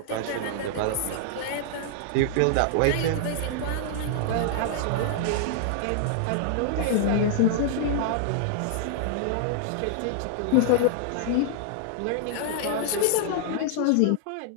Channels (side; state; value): both; different; correlation -0.01